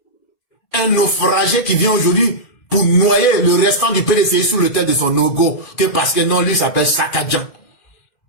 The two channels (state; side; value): late; right; 2.5 ms